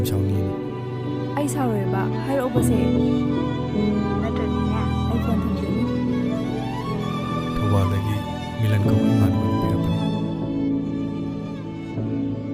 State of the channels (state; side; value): identical; both; correlation 1.00